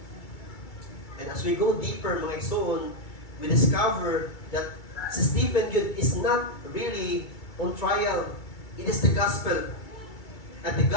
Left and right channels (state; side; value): late; right; 2.3 ms